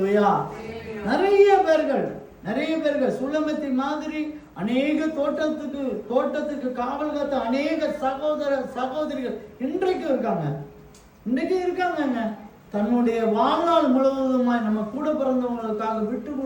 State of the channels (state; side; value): identical; both; correlation 1.00